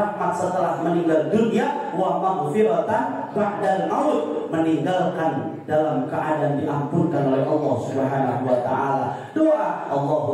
setelah meninggal dunia. Wa maghfiratan ba'dal maut, meninggalkan dalam keadaan diampunkan oleh Allah Subhanahu wa taala. Doa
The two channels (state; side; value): identical; both; correlation 1.00